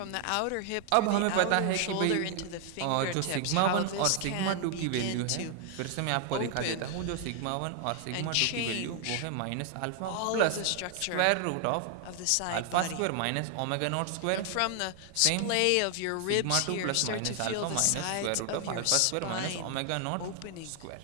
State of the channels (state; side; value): different; both; correlation 0.00